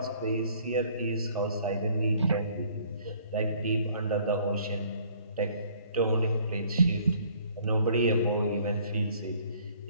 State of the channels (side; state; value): both; inverted; correlation -0.58